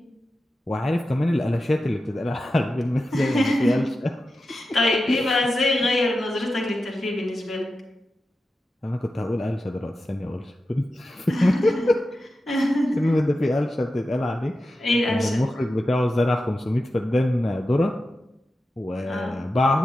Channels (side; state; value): both; normal; correlation 0.92